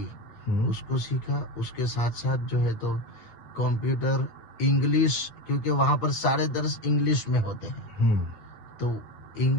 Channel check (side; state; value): right; late; 8.8 ms